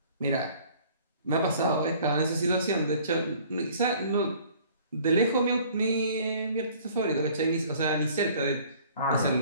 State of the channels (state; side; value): inverted; both; correlation -0.53